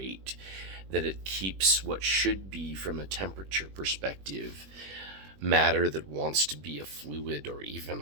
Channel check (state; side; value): late; left; 21 ms